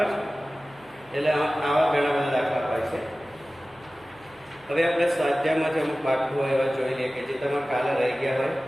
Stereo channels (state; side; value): noise; right; hum, 29 dB below the sound